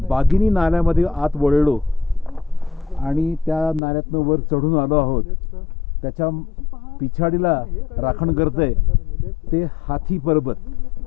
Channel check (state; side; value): drops out; right; at 3.8 s